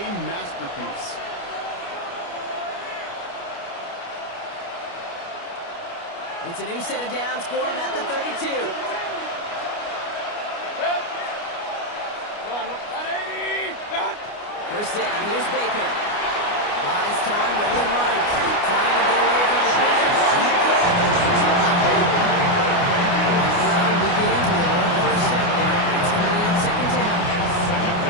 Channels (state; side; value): late; right; 29 ms